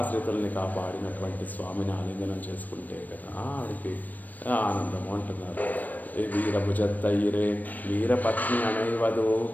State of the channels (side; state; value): right; late; 0.083 ms